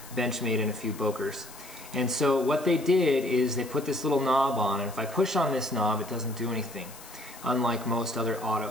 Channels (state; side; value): noise; left; hiss, 17 dB below the sound